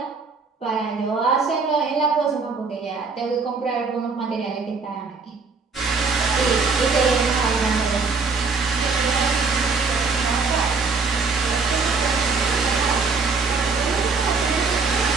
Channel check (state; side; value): quieter; left; 4.5 dB